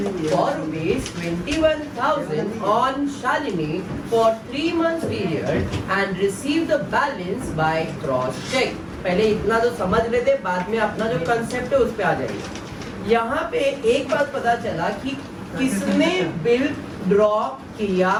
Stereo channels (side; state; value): both; identical; correlation 1.00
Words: for rupees 21,000 on Shalini for 3 months period and receive the balance by cross check. पहले इतना तो समझ लेते, बाद में अपना जो कंसेप्ट है उस पे आ जाएंगे। यहाँ पे एक बात पता चला कि किसने बिल ड्रॉ किया